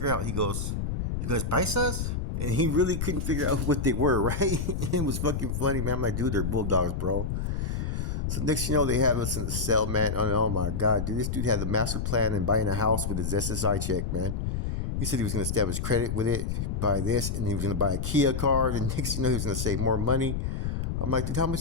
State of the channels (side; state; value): left; noise; rumble, 2 dB below the sound